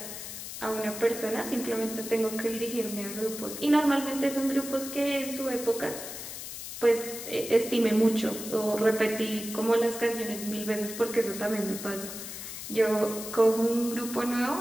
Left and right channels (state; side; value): noise; left; hiss, 9 dB below the sound